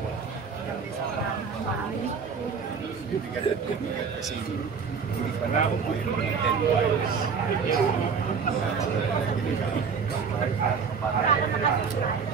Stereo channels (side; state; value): left; quieter; 5.9 dB